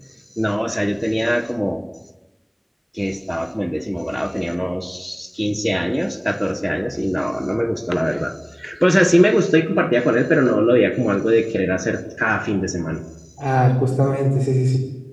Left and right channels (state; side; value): identical; both; correlation 1.00